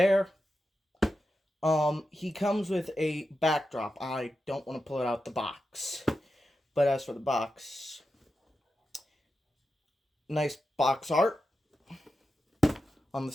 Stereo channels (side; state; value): both; normal; correlation 0.90